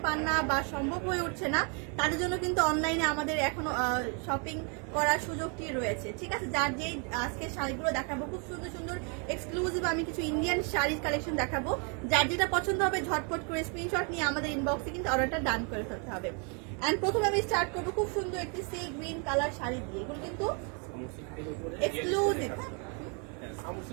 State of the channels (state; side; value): quieter; left; 36.9 dB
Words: পান না বা সম্ভব হয়ে উঠছে না, তাদের জন্য কিন্তু অনলাইনে আমাদের এখনো শপিং করার সুযোগটি রয়েছে। ঠিক আছে, যার যেই আজকে শাড়িগুলো দেখাবো খুব সুন্দর সুন্দর এক্সক্লুসিভ আমি কিছু ইন্ডিয়ান শাড়ির কালেকশন দেখাবো। যার যেটা পছন্দ হবে ঝটপট করে স্ক্রিনশট নিয়ে আমাদের ইনবক্সে কিন্তু অর্ডারটা ডান করে ফেলতে হবে। অ্যান্ড প্রথমে আমি স্টার্ট করবো খুব সুন্দর একটি সি গ্রিন কালার শাড়ি দিয়ে। এগুলো কিন্তু এক্সক্লুসিভ